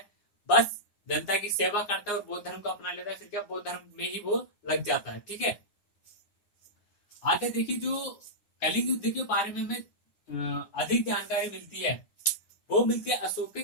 बस जनता की सेवा करता है और बौद्ध धर्म को अपना लेता है, फिर क्या बौद्ध धर्म में ही वो लग जाता है। ठीक है, आगे देखिए, जो कलिंग युद्ध के बारे में हमें अधिक जानकारी मिलती है, वो मिलती है अशोक के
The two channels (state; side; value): late; right; 9.7 ms